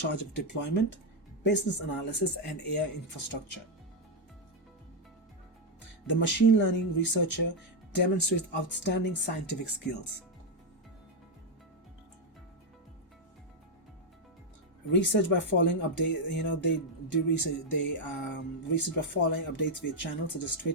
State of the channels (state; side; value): normal; both; correlation 0.02